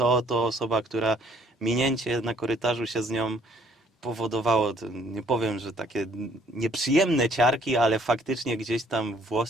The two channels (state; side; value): normal; both; correlation 0.62